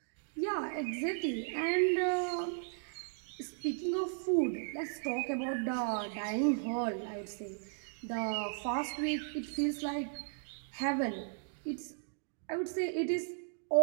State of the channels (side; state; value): left; silent; digital silence